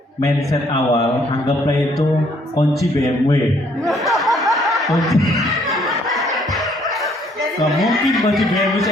mindset awal anggaplah itu kunci BMW. Kunci. Gak mungkin kunci BMW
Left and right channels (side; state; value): both; normal; correlation 0.65